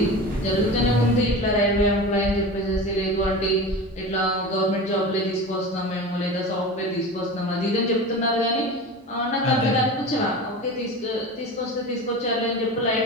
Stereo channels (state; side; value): normal; both; correlation 0.31